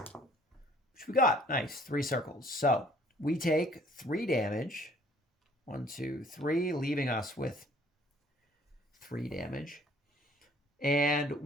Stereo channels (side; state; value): both; normal; correlation 0.57